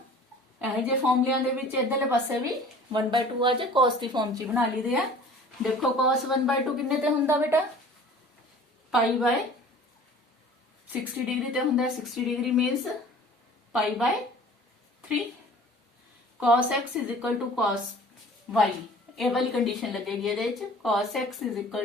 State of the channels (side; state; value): both; normal; correlation 0.46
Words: ਇਹ ਜੇ ਫਾਰਮੂਲਿਆਂ ਦੇ ਵਿੱਚ ਇਧਰਲੇ ਪਾਸੇ ਵੀ 1 by 2 ਆ ਜੇ cos ਦੀ ਫਾਰਮ 'ਚ ਬਣਾ ਲਈਦੇ ਆ। ਦੇਖੋ cos 1 by 2 ਕਿੰਨੇ ਤੇ ਹੁੰਦਾ ਬੇਟਾ ਪਾਈ by 60 डिग्री ਤੇ ਹੁੰਦਾ 60 degree means pi by 3 cos x is equal to cos y ਇਹ ਵਾਲੀ ਕੰਡੀਸ਼ਨ ਲੱਗੇਗੀ ਇਹਦੇ ਵਿੱਚ cos x is